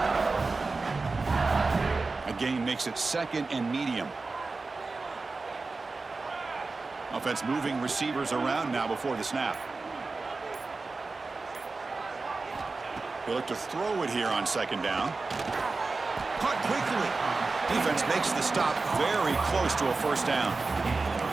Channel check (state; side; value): quieter; left; 3.8 dB